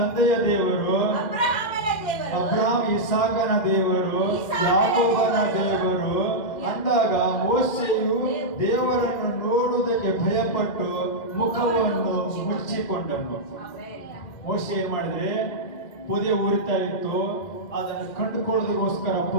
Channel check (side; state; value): right; late; 2.2 ms